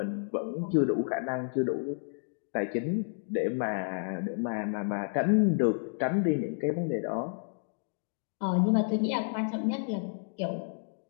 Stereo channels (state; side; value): silent; right; digital silence